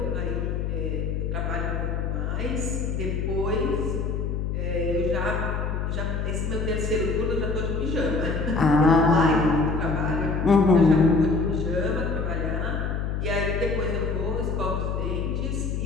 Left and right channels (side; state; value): left; noise; hum, 1 dB below the sound